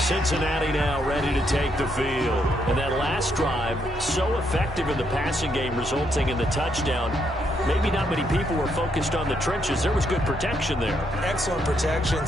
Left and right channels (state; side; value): normal; both; correlation 0.76